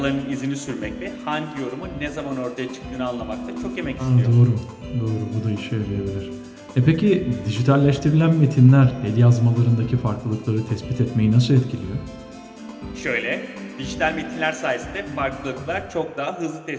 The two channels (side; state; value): both; identical; correlation 1.00